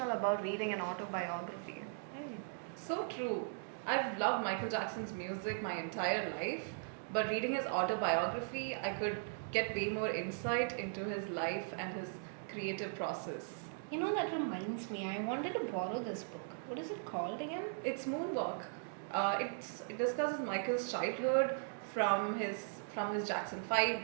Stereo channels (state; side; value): silent; left; digital silence